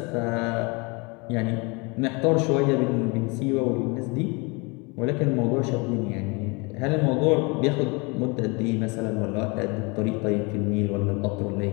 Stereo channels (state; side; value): quieter; right; 29.1 dB